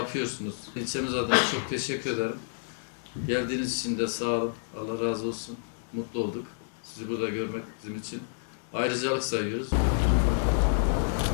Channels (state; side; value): silent; right; 58 dB below the other